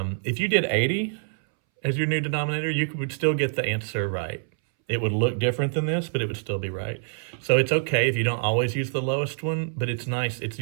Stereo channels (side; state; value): left; silent; 61 dB below the other